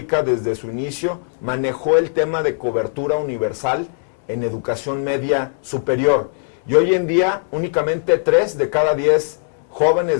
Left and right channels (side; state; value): right; silent; 65 dB below the other